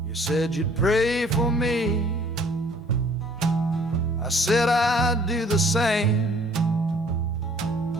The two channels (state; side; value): normal; both; correlation 0.57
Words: You said you'd pray for me, I said I'd do the same.